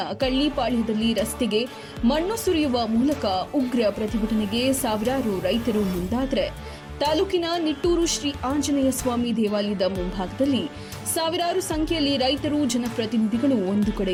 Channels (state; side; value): identical; both; correlation 1.00